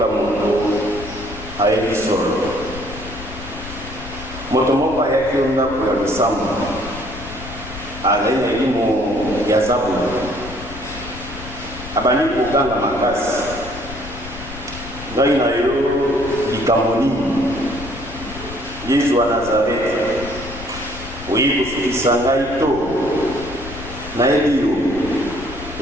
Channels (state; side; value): noise; left; rumble, 13 dB below the sound